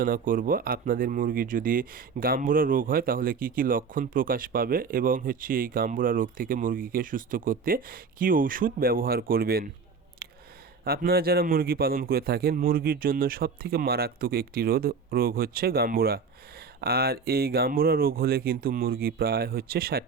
করব আপনাদের মুরগির যদি গাম্বুরা রোগ হয় তাহলে কি কি লক্ষণ প্রকাশ পাবে এবং এই গাম্বুরা রোগ থেকে মুরগিকে সুস্থ করতে কি ওষুধ ব্যবহার করবেন। আপনারা যারা মুরগি পালন করে থাকেন, মুরগির জন্য সবথেকে মারাত্মক একটি রোগ হচ্ছে গাম্বুরা। আর এই গাম্বুরা রোগ হলে কিন্তু মুরগি প্রায় 60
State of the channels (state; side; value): quieter; left; 5.3 dB